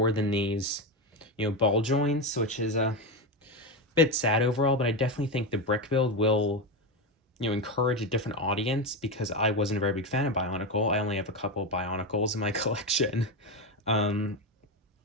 than these, ball joints, which is a bit sad overall, but I definitely think the brick build will, encourage a different audience, because I wasn't a very big fan of Bionicle. I only have a couple of Bionicles in my collection.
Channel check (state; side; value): normal; both; correlation 0.14